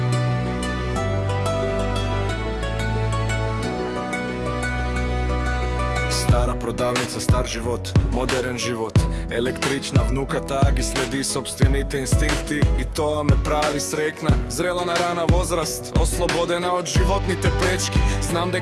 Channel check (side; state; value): both; identical; correlation 1.00